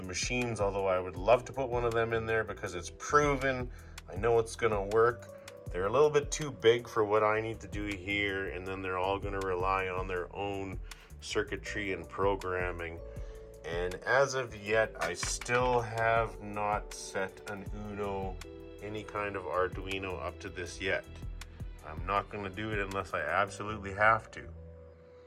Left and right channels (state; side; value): identical; both; correlation 1.00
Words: machines, although I would love to put one of them in there because it's proven. I know it's going to work. They're a little bit too big for what I need to do here, and then they're all going to rely on their own circuitry and programming. And as of yet, I still have not set an Uno, any kind of Arduino up to this yet. I'm not going to do it unless I absolutely have to.